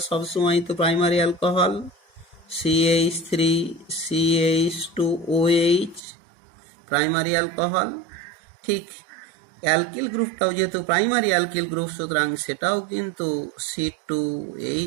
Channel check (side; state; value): left; drops out; at 6.0 s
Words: সবসময় তো primary alcohol CH3CH2OH primary alcohol. ঠিক অ্যালকিল গ্রুপটাও যেহেতু প্রাইমারি অ্যালকিল গ্রুপ, সুতরাং সেটাও কিন্তু